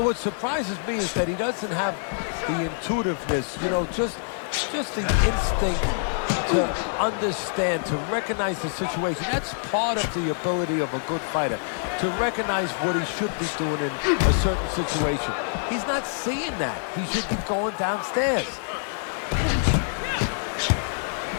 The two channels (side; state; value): right; silent; digital silence